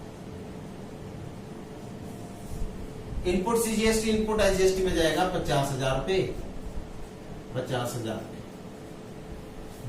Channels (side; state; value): both; identical; correlation 1.00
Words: input CGST input SGST में जाएगा 50,000 रुपए। 50,000